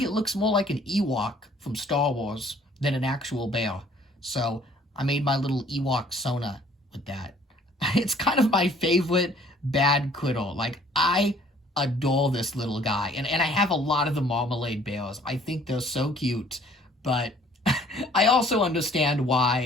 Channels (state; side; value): normal; both; correlation 0.57